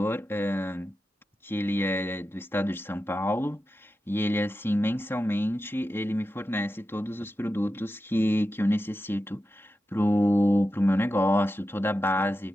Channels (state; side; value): normal; both; correlation 0.91